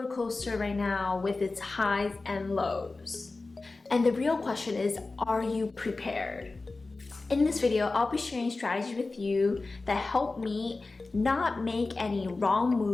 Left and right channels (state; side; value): quieter; right; 3.5 dB